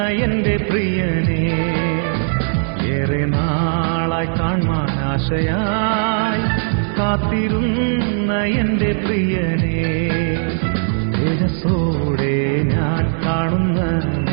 എന്റെ പ്രിയനെ ഏറെ നാളായി കാണാൻ ആശയായി കാത്തിരുന്ന എന്റെ പ്രിയനെ തേജസ്സോടെ ഞാൻ കാണുന്ന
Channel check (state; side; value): silent; left; digital silence